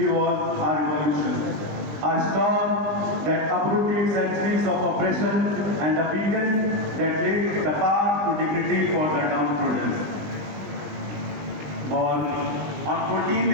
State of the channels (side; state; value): left; late; 20 ms